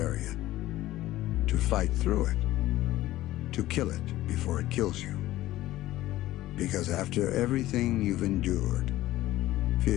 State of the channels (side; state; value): right; quieter; 15.7 dB